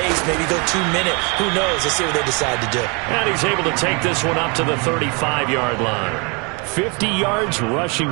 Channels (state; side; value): quieter; left; 31.8 dB